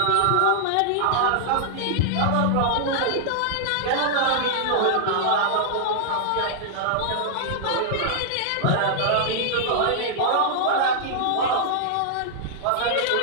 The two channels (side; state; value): both; different; correlation -0.01